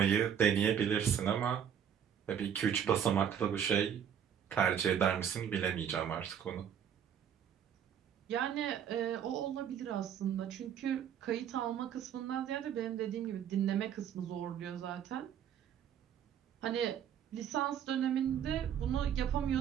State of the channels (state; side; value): quieter; left; 8.9 dB